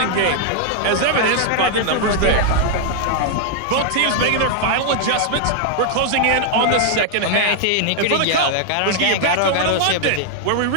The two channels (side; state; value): both; different; correlation 0.00